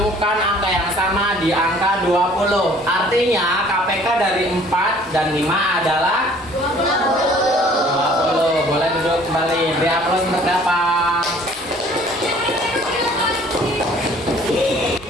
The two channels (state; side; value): noise; right; rumble, 29 dB below the sound